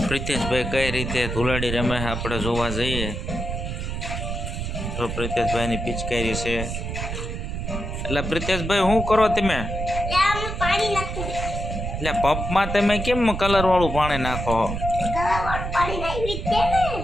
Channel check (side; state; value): right; noise; rumble, 4 dB below the sound